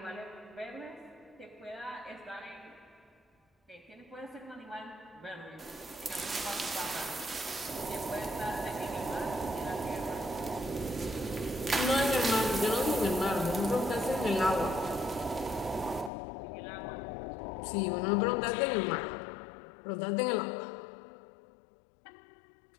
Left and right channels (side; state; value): right; drops out; at 16.1 s